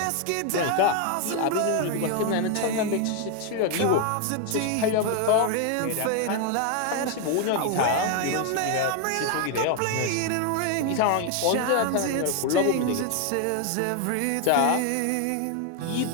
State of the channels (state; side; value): different; both; correlation 0.01